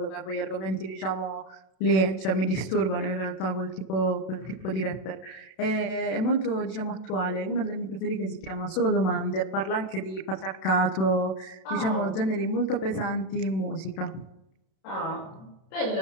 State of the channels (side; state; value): right; late; 32 ms